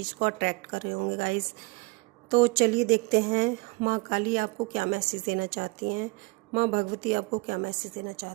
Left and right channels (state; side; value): quieter; left; 26.4 dB